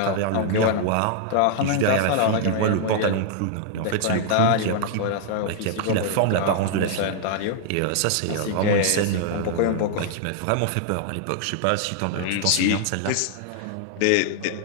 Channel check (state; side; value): different; both; correlation -0.01